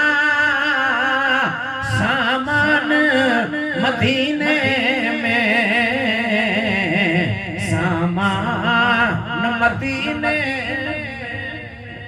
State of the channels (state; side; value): identical; both; correlation 1.00